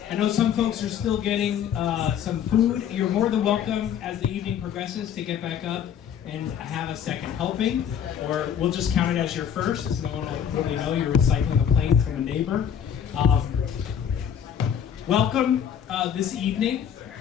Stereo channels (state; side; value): quieter; right; 8.7 dB